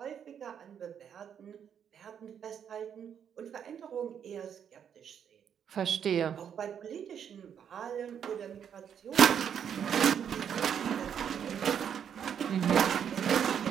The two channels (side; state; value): left; quieter; 8.3 dB